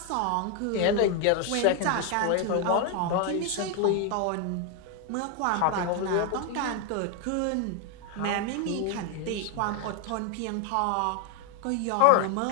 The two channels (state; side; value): different; both; correlation 0.01